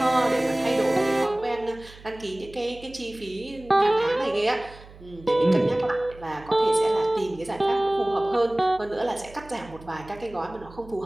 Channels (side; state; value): right; noise; hum, 20 dB below the sound